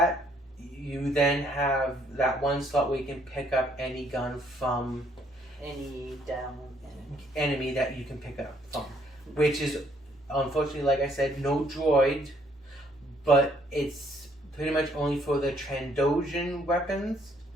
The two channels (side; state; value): both; normal; correlation 0.66